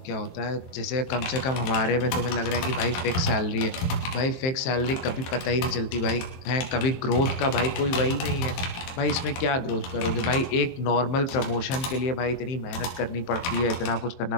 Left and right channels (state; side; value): late; right; 23 ms